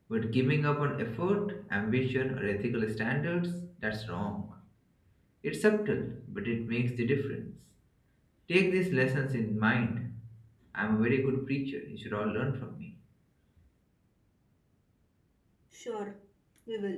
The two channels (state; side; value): identical; both; correlation 1.00